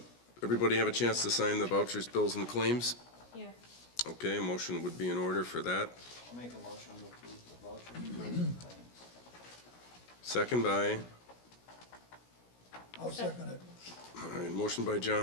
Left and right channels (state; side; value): late; right; 17 ms